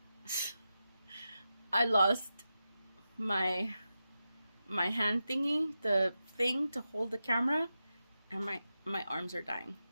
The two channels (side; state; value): both; inverted; correlation -0.90